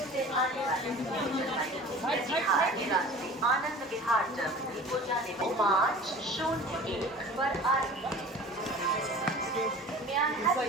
से आने वाले न्यू जलपाईगुड़ी कटिहार रास्ते आनंद विहार टर्मिनल को जाने में 501 पर आ रही है। May I have your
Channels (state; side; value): normal; both; correlation 0.42